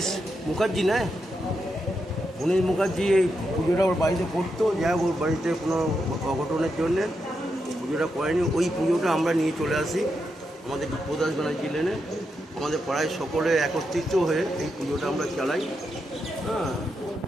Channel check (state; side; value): normal; both; correlation 0.84